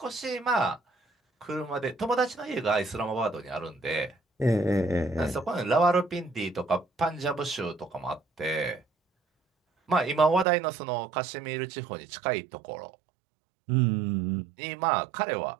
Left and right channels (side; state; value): left; drops out; at 10.5 s